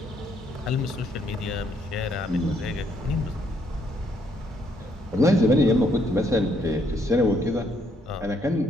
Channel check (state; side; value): normal; both; correlation 0.71